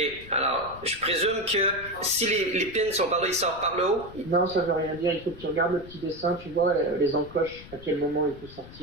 alors, je présume que si les pins sont par là, ils sortent par le haut? Non, ça veut rien dire. Il faut que tu regardes le petit dessin, tu vois les encoches, à quel moment il faut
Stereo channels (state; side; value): noise; left; rumble, 17 dB below the sound